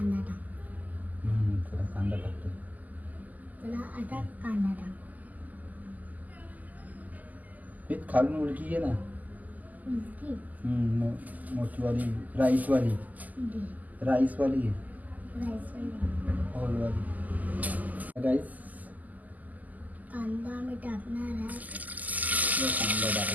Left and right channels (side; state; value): left; late; 0.080 ms